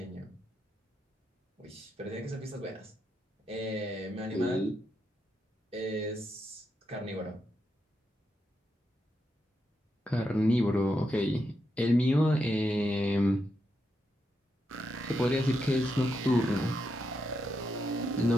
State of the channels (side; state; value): both; normal; correlation 0.83